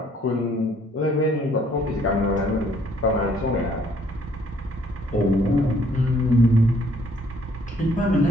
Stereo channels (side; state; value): both; normal; correlation 0.64